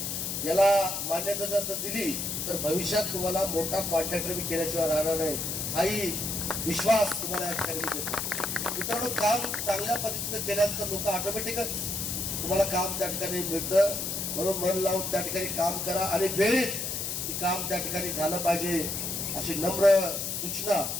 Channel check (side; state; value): left; noise; hiss, 2 dB below the sound